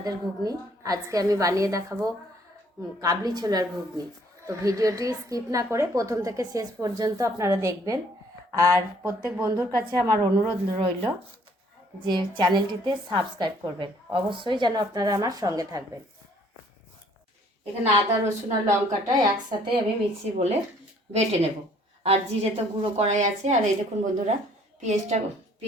ঘুগনি, আজকে আমি বানিয়ে দেখাবো কাবলি ছোলার ঘুগনি। তো ভিডিওটি স্কিপ না করে প্রথম থেকে শেষ পর্যন্ত আপনারা দেখবেন। আর প্রত্যেক বন্ধুর কাছে আমার অনুরোধ রইল যে চ্যানেলটিতে সাবস্ক্রাইব করবেন, অবশ্যই যেন আপনারা আমার সঙ্গে থাকবেন। এখানে আদা, রসুন আর লঙ্কাটা একসাথে আমি মিক্সি বলে বেটে নেব। আর জিরে তো গুঁড়ো করাই আছে। আর এই দেখুন বন্ধুরা,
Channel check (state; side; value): normal; both; correlation 0.60